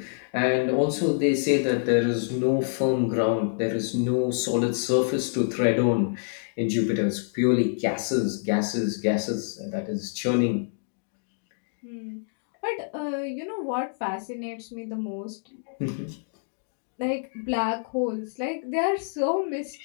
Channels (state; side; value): silent; right; digital silence